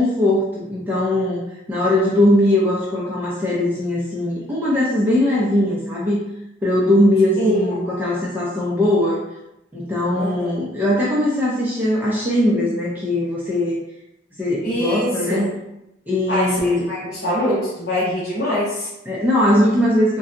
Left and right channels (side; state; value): both; normal; correlation 0.63